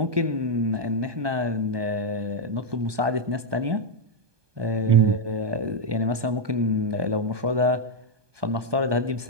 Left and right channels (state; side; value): late; left; 1.2 ms